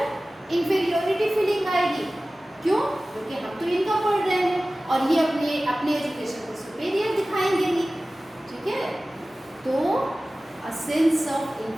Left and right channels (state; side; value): normal; both; correlation 0.97